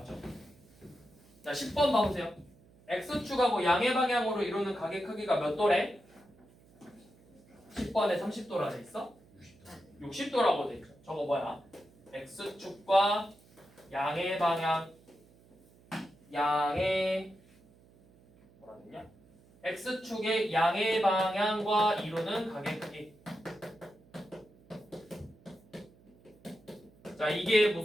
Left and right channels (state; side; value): noise; right; hum, 27 dB below the sound